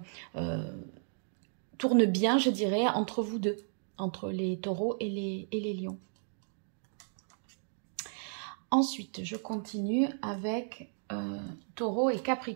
tournent bien, je dirais, entre vous deux, entre les taureaux et les lions. Ensuite, je continue avec taureau et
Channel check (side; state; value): left; silent; digital silence